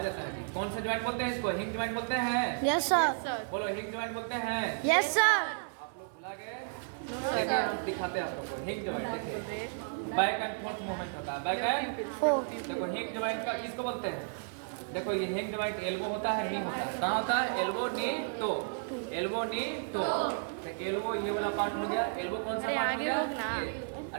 है। कौन से ज्वाइंट बोलते हैं इसको? हिंग ज्वाइंट बोलते हैं। Yes sir. बोलो हिंग ज्वाइंट बोलते हैं। Yes sir. आप लोग भुला गए? देखिए, दिखाते हैं आप लोगों को। हिंग ज्वाइंट देखिए बैक एंड फोर्थ मूवमेंट होता है। Back and fourth. देखो हिंग ज्वाइंट का किसको बोलते हैं? देखो ये हैंड जॉइंट एल्बो होता है, नी होता है। कहाँ होता है? Elbow, knee, toe. Elbow, knee, toe. तो एल्बो ये वाला पार्ट हो गया। एल्बो कौन सा अरे पार्ट हो आगे गया? होग ना। ये।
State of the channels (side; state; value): left; silent; 56 dB below the other